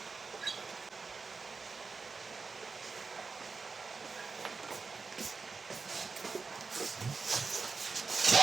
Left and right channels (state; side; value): quieter; left; 4.6 dB